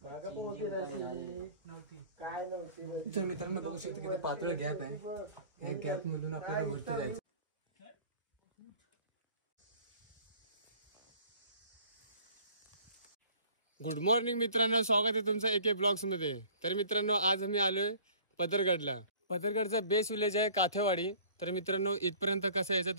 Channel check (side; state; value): both; inverted; correlation -0.50